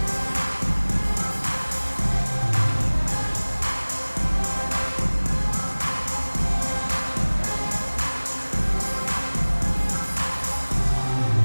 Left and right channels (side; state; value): both; inverted; correlation -1.00